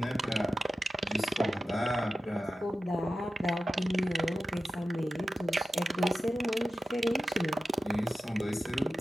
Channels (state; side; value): normal; both; correlation 0.92